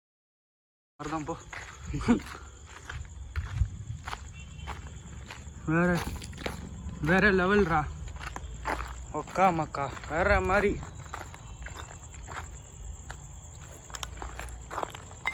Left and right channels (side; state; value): both; identical; correlation 1.00